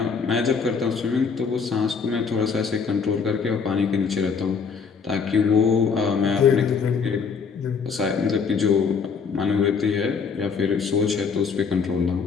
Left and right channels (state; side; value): quieter; right; 5.7 dB